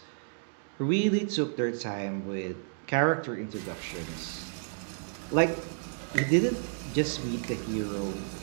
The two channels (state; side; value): silent; left; digital silence